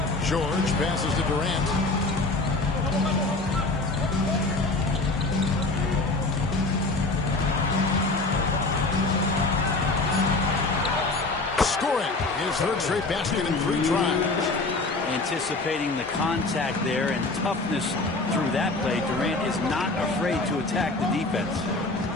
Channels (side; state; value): right; quieter; 3.2 dB